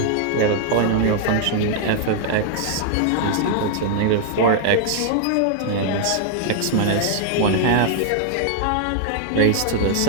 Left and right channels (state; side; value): different; both; correlation 0.00